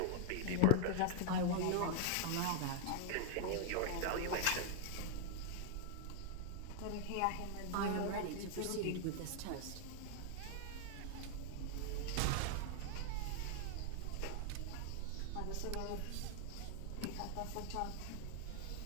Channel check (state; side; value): different; both; correlation 0.00